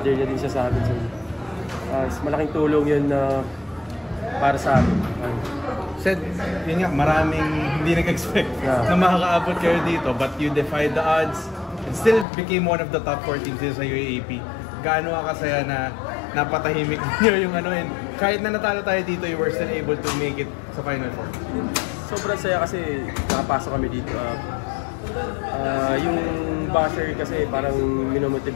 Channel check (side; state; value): right; drops out; at 12.2 s